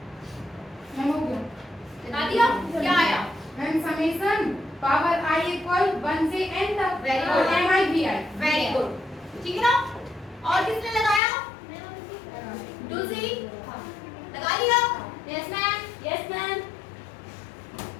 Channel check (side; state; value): right; drops out; at 11.2 s